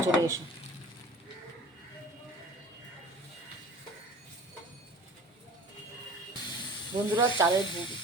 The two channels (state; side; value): normal; both; correlation 0.42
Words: চলে এসো। বন্ধুরা